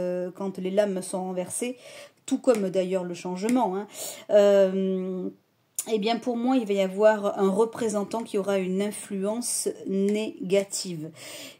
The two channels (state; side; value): identical; both; correlation 1.00